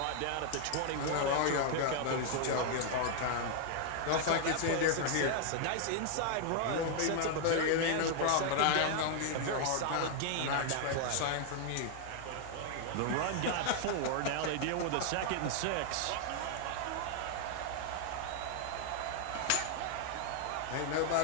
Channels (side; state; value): both; different; correlation 0.00